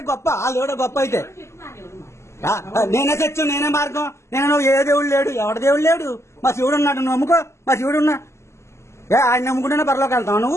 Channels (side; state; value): right; late; 0.13 ms